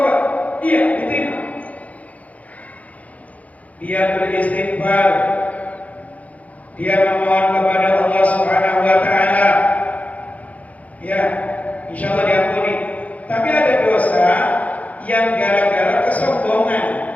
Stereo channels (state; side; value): late; right; 0.070 ms